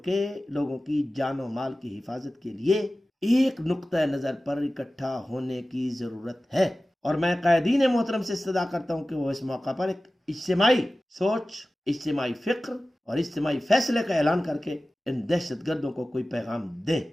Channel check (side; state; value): both; normal; correlation 0.96